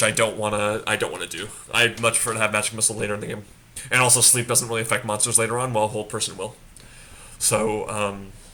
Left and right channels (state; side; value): identical; both; correlation 1.00